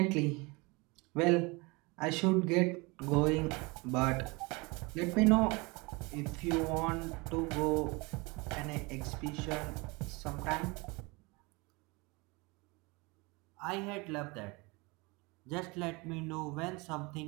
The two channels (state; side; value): quieter; left; 26.5 dB